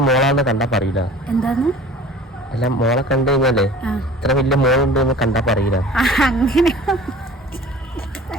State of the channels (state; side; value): normal; both; correlation 0.44